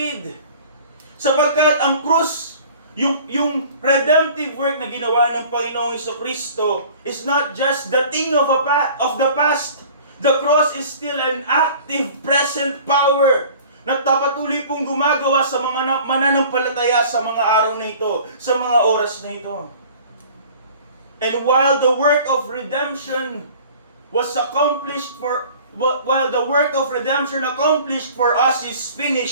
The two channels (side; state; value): both; inverted; correlation -0.47